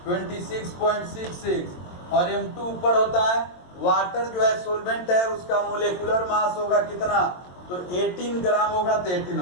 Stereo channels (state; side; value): late; right; 22 ms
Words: 26.66, और M2 ऊपर होता है, वाटर जो है सोलवेंट है उसका मोलेकुलर मास होगा कितना, तो 18 ग्राम होगा, तो 18